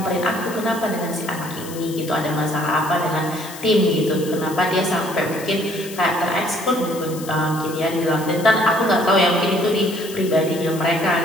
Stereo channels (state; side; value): noise; left; hiss, 14 dB below the sound